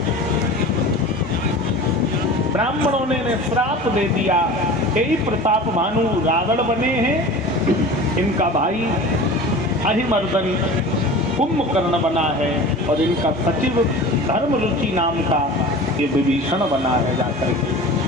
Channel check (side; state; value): both; normal; correlation 0.37